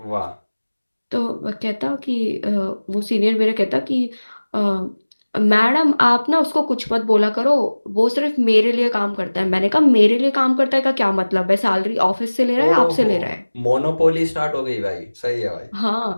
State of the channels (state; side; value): inverted; both; correlation -1.00